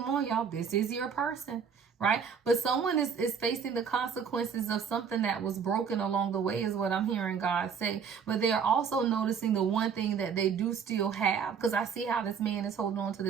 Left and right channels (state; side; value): quieter; left; 6.7 dB